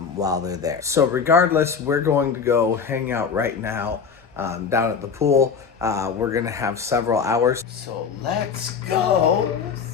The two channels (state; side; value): quieter; right; 6.0 dB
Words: they're there. So regardless, we're going to go hang out right now down at the pool. We're gonna have several hours. So let's go